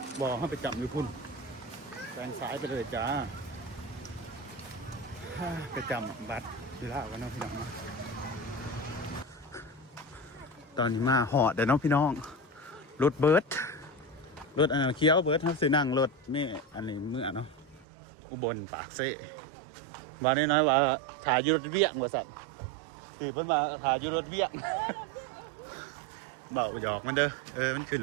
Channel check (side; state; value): left; drops out; at 17.9 s